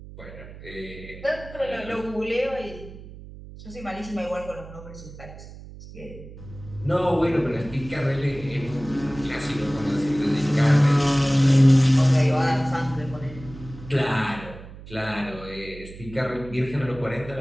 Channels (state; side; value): noise; right; hum, 16 dB below the sound